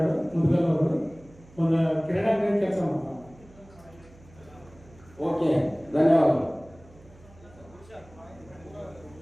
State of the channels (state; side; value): noise; right; hum, 24 dB below the sound